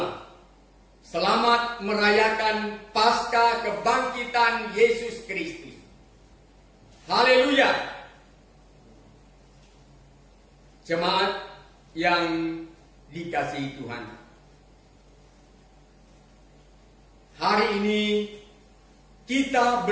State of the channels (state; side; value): identical; both; correlation 1.00